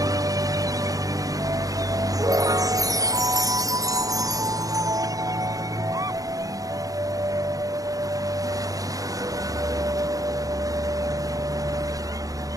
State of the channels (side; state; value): left; late; 0.17 ms